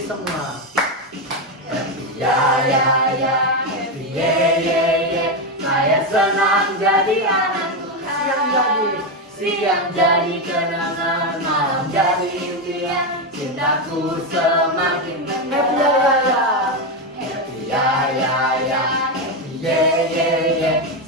semua. Happy happy ye. Saya senang jadi anak Tuhan. Siang jadi kenangan cintaku semakin happy ya ya ya. Happy ya ya ya. Happy ye ye ye.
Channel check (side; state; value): both; normal; correlation 0.09